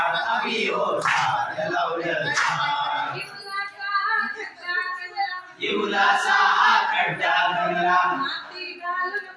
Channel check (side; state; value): both; identical; correlation 1.00